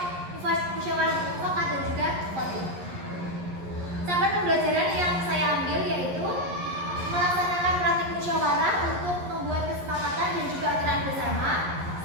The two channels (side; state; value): left; late; 11 ms